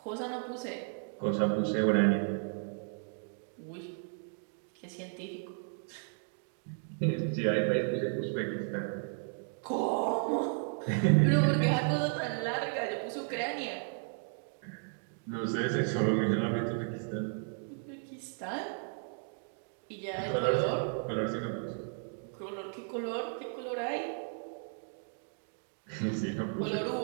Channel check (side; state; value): left; silent; 55 dB below the other